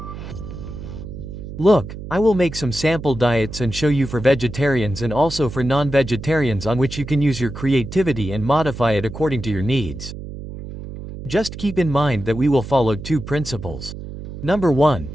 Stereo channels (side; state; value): right; noise; hum, 10 dB below the sound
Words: Look, I will make some sample diets and show you for vegetarians and also for non-vegetarians, on which you can use your creativity and modify it according to your needs. Just keep in mind that we will follow two principles. Number 1,